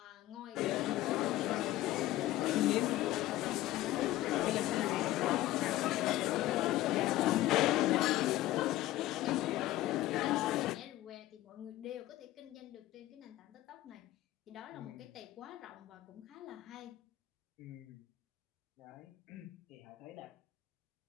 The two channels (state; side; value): quieter; right; 15.7 dB